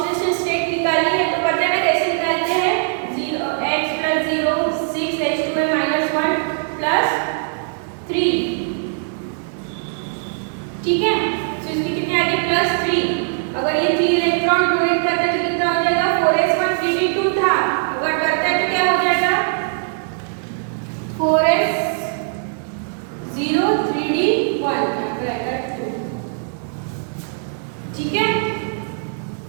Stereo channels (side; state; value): left; silent; 65 dB below the other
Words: स्टेट निकाली है। तो पता है कैसे निकालते हैं? X +0 6H2A -1 +3। ठीक है। तो इसकी कितनी आ गई? +3। अगर ये 3 इलेक्ट्रॉन डोनेट करता है तो कितना हो जाएगा? 4s1 3d2 था, अगर करता है तो क्या हो जाएगा? 4s0 3d1 रहेगा 2। ठीक है।